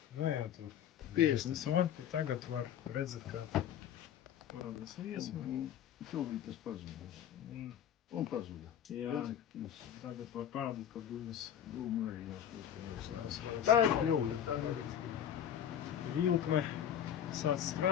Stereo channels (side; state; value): right; quieter; 9.8 dB